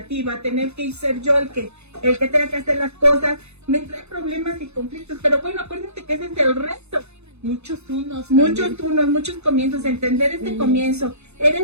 tener que ser yo el que tenga que hacer las cosas, me trae problemas y conflictos, pero bueno, acuérdense que ese es el resto. Muchos unos, muchos comienzos, entender este comienzo.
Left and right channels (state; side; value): late; left; 0.81 ms